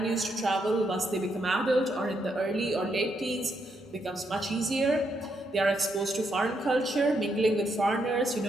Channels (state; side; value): normal; both; correlation 0.78